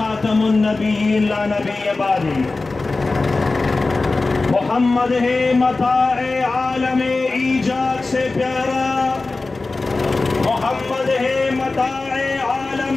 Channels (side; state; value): right; quieter; 3.5 dB